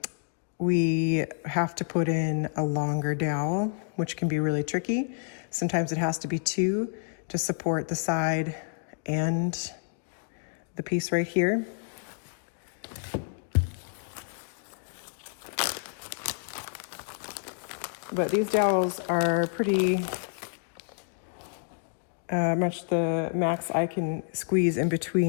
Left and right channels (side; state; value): right; silent; digital silence